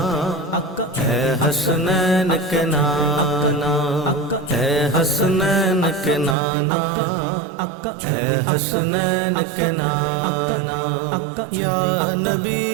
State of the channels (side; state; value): left; drops out; at 6.4 s